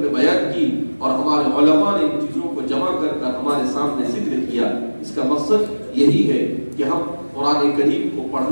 نے بیان کی اور ہمارے علماء نے ان چیزوں کو جمع کر کر ہمارے سامنے ذکر کیا. اس کا مقصد یہی ہے کہ ہم قرآن کریم کو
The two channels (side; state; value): both; inverted; correlation -1.00